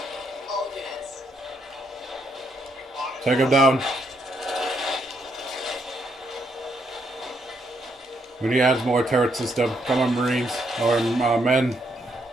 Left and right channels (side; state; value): both; normal; correlation 0.75